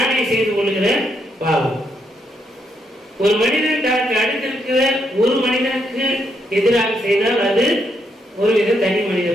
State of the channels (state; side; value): normal; both; correlation 0.77